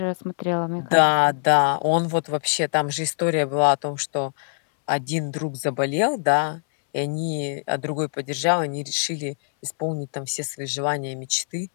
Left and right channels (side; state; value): right; silent; 63 dB below the other